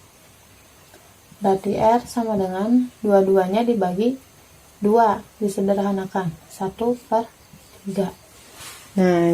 Berarti R sama dengan 2-2-nya dibagi 2, disederhanakan 1 per 3. Nah,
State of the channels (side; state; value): both; identical; correlation 1.00